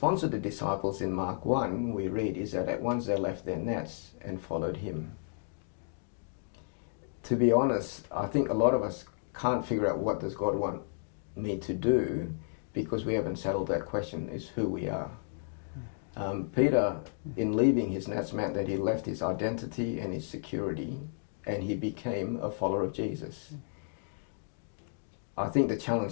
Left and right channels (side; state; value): right; silent; digital silence